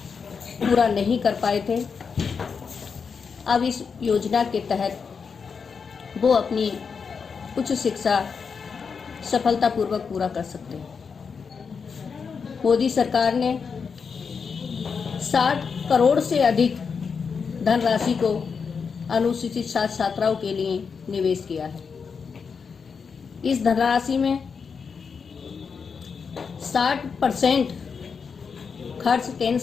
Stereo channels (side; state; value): right; quieter; 5.8 dB